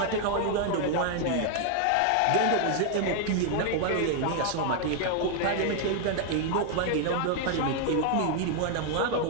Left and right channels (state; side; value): different; both; correlation 0.00